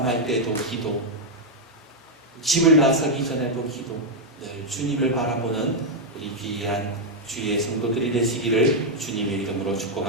때도 기도, 집을 나서기 전에도 기도, 늘 주님을 바라보는 우리 귀한 주의 성도들이 되시기를 주님의 이름으로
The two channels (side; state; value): both; normal; correlation -0.02